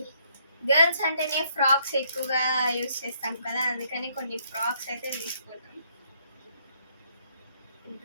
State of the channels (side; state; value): both; inverted; correlation -0.69